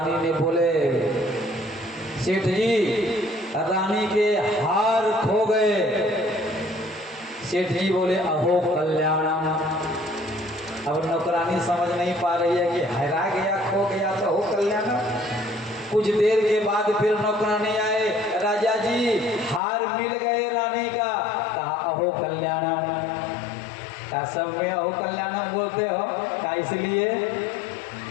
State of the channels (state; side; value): drops out; right; at 19.6 s